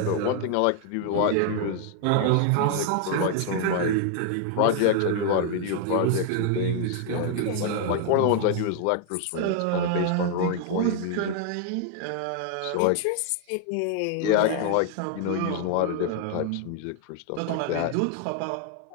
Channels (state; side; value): different; both; correlation 0.00